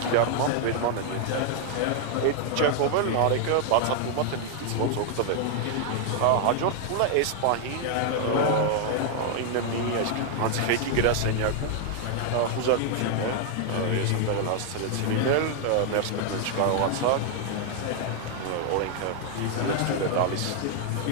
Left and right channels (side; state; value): both; different; correlation 0.00